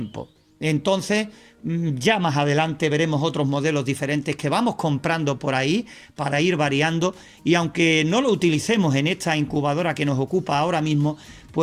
Entonces, ya más adelante veremos otros modelos diferentes que vamos comprando por ahí para ir variando, y aunque no lo utilicemos en esta incubadora que nos ocupa ahora mismo,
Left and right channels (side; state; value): both; identical; correlation 1.00